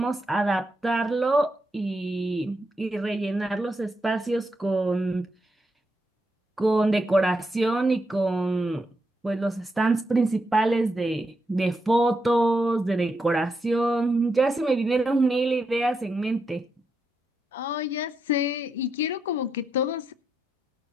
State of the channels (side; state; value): both; normal; correlation 0.83